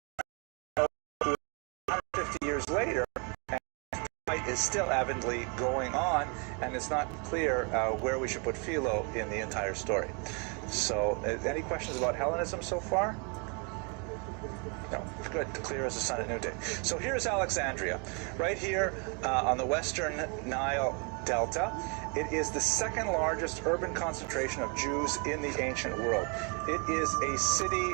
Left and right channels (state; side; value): quieter; left; 34.9 dB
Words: 150 years later. fight is still avidly going on, and it's not clear where we should put Philo in the entire story. So, any questions about Hellenism so far? No, good, clear as the sun at noonday. So here's Alexandria, right here on the western Nile Delta. It is the second largest urban concentration of Jews in the ancient world. It is a city,